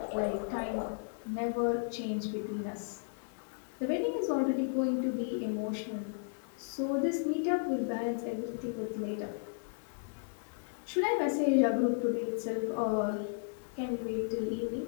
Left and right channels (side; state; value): right; silent; digital silence